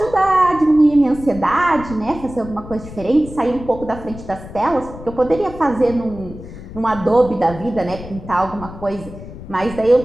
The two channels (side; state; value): left; noise; rumble, 14 dB below the sound